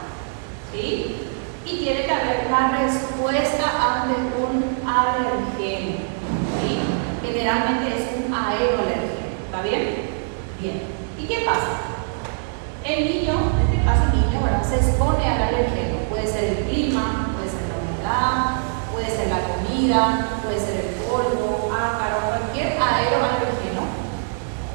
¿sí? Y tiene que haber una respuesta ante un alergeno, ¿sí? Generalmente es un aeroalergeno. ¿Está bien? Bien. ¿Y qué pasa? El niño, en este caso el niño, ¿verdad?, se expone al alergeno. Puede ser el clima, puede ser la humedad, puede ser la comida, puede ser el polvo, ácaro, cualquier aeroalergeno.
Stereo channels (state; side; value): silent; left; digital silence